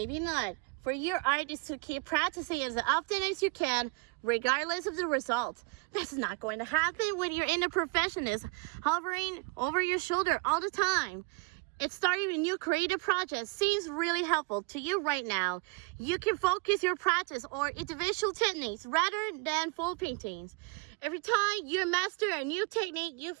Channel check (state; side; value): quieter; left; 30.5 dB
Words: not, for your art is to keep practicing as often as you can, regardless of the result. That's not going to happen when you're in a perfectionist, hovering over your shoulder all the time. It's starting a new creative project seems really helpful to you right now. You can focus your practice or individual techniques rather than full paintings. Every time you master a new technique, you